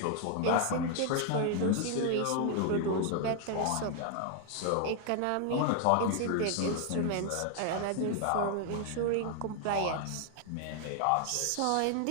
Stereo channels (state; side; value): different; both; correlation 0.00